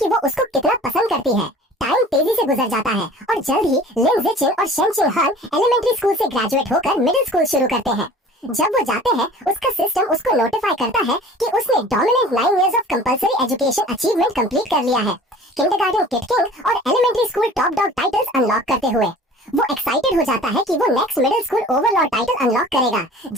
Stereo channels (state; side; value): normal; both; correlation 0.45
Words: वो उसको कितना पसंद करती है। टाइम तेजी से गुजर जाता है और जल्द ही लिन जिचिन और शेंगशिन हान एलिमेंट्री स्कूल से ग्रेजुएट होकर मिडिल स्कूल शुरू करते हैं। जब वो जाते हैं, उसका सिस्टम उसको नोटिफाई करता है कि उसने dominant 9 years of compulsory education achievement complete कर लिया है, किंडरगार्टन किड किंग और elementary school top dog titles unlock करते हुए। वो एक्साइटेड हो जाता है कि वो next middle school overlord title unlock करेगा,